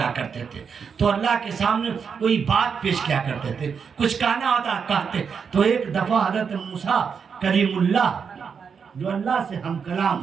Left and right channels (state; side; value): quieter; left; 6.3 dB